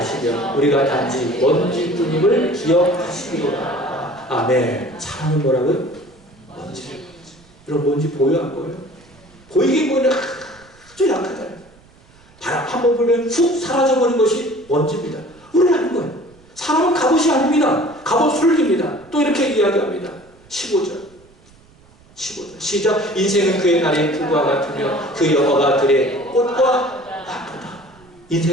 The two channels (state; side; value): noise; right; rumble, 28 dB below the sound